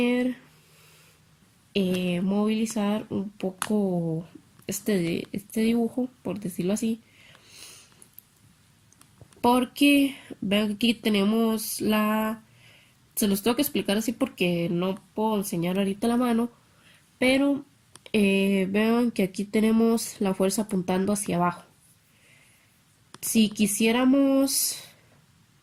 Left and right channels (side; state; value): both; identical; correlation 1.00